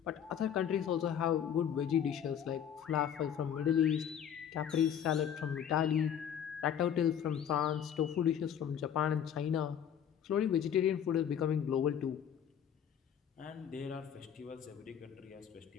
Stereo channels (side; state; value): right; quieter; 8.9 dB